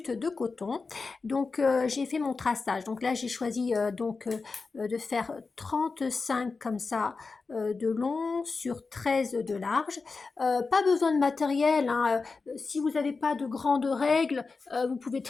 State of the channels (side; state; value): right; quieter; 4.3 dB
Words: de coton, donc j'ai fait mon traçage. Donc là j'ai choisi de faire 35 comme ça de long sur 13 de large. Pas besoin de matériel, hein. Si vous n'avez pas de grandes règles, vous pouvez